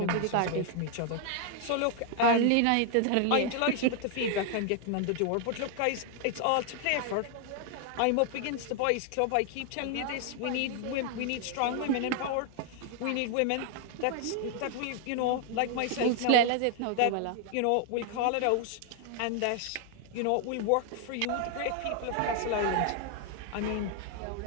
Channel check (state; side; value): different; both; correlation 0.00